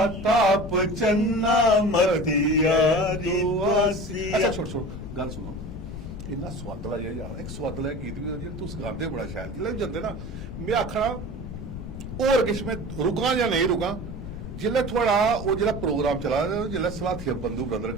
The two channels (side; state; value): left; noise; rumble, 9 dB below the sound